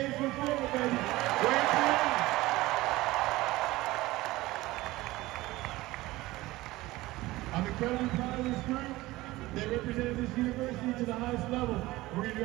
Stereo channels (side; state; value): left; quieter; 18.8 dB